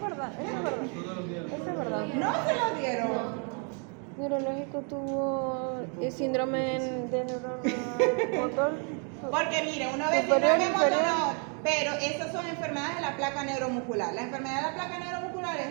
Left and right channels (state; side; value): quieter; left; 39.4 dB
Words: verdad, eso es verdad. Eso es verdad. ¿No se lo dieron? Neurológico tuvo síndrome de neurona motor. Porque mire, uno ve Superior, síndrome inferior. motor, pero esas son enfermedades de la placa neuromuscular. La enfermedad de la placa neuromuscular